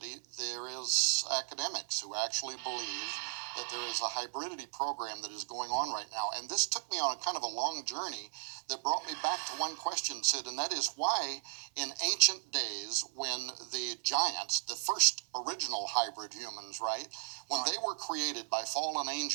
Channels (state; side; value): silent; left; 54 dB below the other